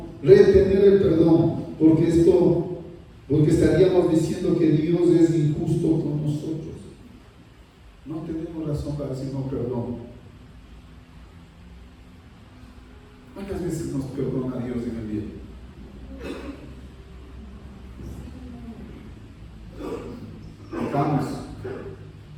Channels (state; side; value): identical; both; correlation 1.00